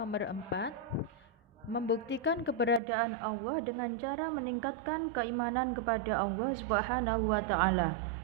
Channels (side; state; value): left; drops out; at 2.8 s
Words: 4, membuktikan keberadaan Allah dengan cara meningkatkan keimanan kepada Allah Subhanahu wa Ta'ala.